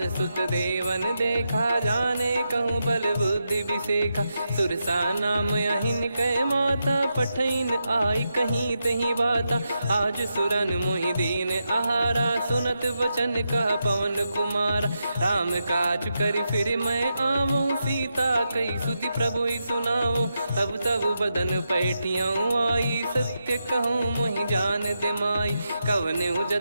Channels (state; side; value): inverted; both; correlation -0.86